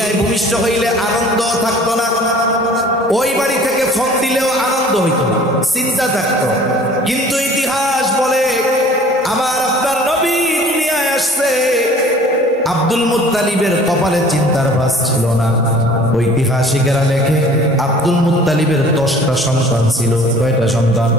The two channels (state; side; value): normal; both; correlation 0.49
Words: ভূমিষ্ঠ হইলে আনন্দ থাকতো না, ওই বাড়ি থেকে ফোন দিলেও আনন্দ হইত না, চিন্তা থাকতো। কিন্তু ইতিহাস বলে আমার আপনার নবী দুনিয়ায় আসছে, আব্দুল মুত্তালিবের কপালে চিন্তার ভাঁজ ছিল না। ঐতিহাসিকেরা লেখে আব্দুল মুত্তালিবের 10টা সন্তান ছিল। কয়টা সন্তান?